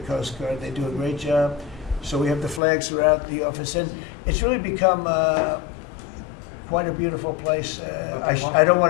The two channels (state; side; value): drops out; right; at 2.6 s